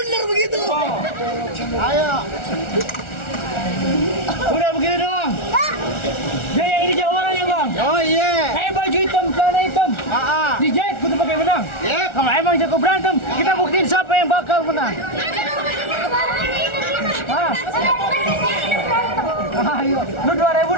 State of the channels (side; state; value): right; late; 1.4 ms